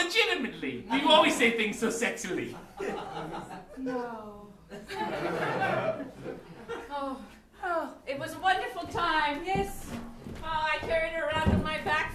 You always say things so sexily. No. Oh, it was a wonderful time. Yes. Oh, I carried her around on my back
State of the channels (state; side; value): identical; both; correlation 1.00